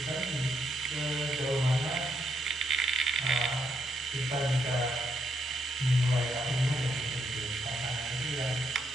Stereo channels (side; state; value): both; normal; correlation 0.77